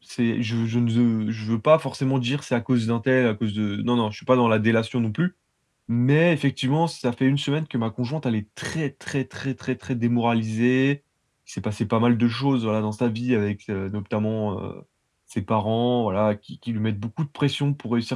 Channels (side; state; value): both; identical; correlation 1.00